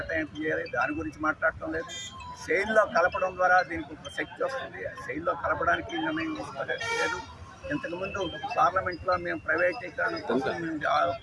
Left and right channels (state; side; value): identical; both; correlation 1.00